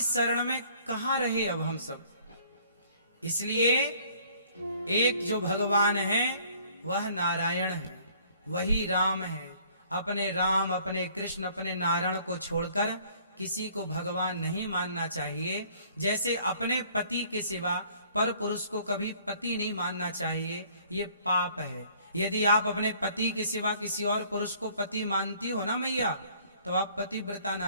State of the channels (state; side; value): inverted; both; correlation -0.58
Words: में कहां रहे अब हम सब। इसलिए एक जो भगवान है वह नारायण है, वही राम है। अपने राम, अपने कृष्ण, अपने नारायण को छोड़कर किसी को भगवान नहीं मानना चाहिए। जैसे अपने पति के सिवा पर पुरुष को कभी पति नहीं मानना चाहिए, ये पाप है। यदि आप अपने पति के सिवा किसी और पुरुष को पति मानती हो ना मैया, तो आप पतिव्रता